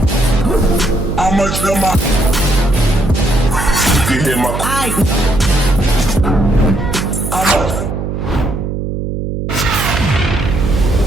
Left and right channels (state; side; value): noise; right; hum, 4 dB below the sound